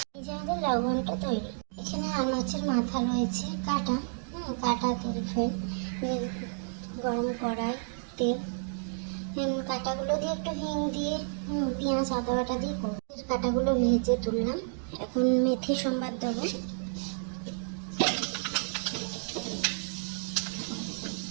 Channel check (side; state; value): left; silent; digital silence